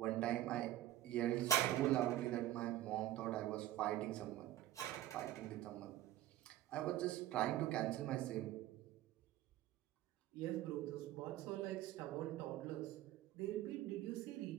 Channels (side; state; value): left; quieter; 13.9 dB